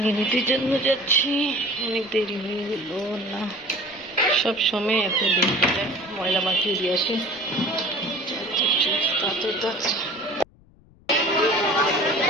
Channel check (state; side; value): noise; left; rumble, 28 dB below the sound